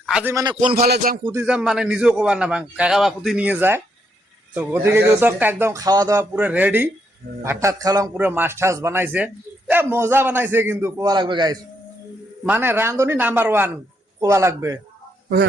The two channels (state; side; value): normal; both; correlation 0.76